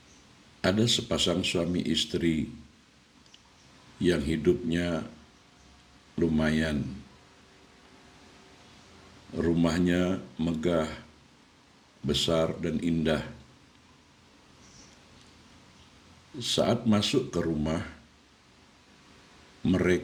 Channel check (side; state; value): both; identical; correlation 1.00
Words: Ada sepasang suami istri yang hidupnya lumayan. Rumahnya megah, besar dan indah. Saat masuk ke rumah,